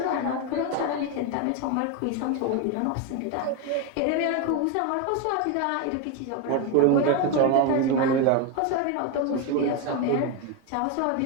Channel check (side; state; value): both; different; correlation 0.02